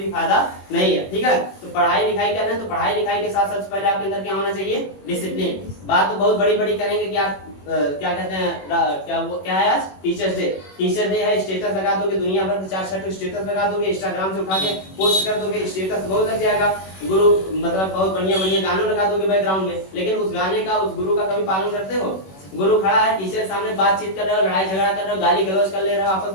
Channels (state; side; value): late; right; 21 ms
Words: फायदा नहीं है, ठीक है। तो पढ़ाई लिखाई कर रहे हैं, तो पढ़ाई लिखाई के साथ सबसे पहले आपके अंदर क्या होना चाहिए? डिसिप्लिन। बात तो बहुत बड़ी बड़ी करेंगे कि आप क्या कहते हैं, क्या है आज? Teachers day. टीचर डे है, स्टेटस लगा दोगे, दुनिया भर के 4-6 स्टेटस लगा दोगे, इंस्टाग्राम से उठा के पोस्ट कर दोगे, स्टेटस बहुत लग जाएगा। गुरु मतलब बहुत बढ़िया बढ़िया गाना लगा दोगे बैकग्राउंड में, लेकिन उस गाने का, उस गुरु का कभी पालन करते हो? गुरु खड़ा है, टीचर के सामने बातचीत कर रहे हो, लड़ाई झगड़ा कर रहे हो, गाली गलौज कर ले रहे हो